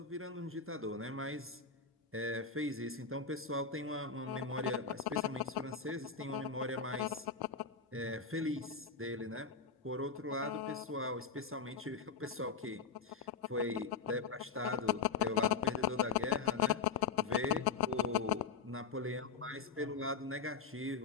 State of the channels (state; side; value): quieter; right; 5.5 dB